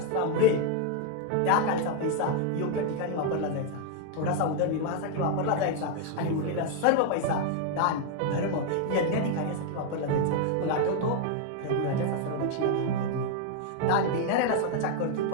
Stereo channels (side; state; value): both; different; correlation 0.01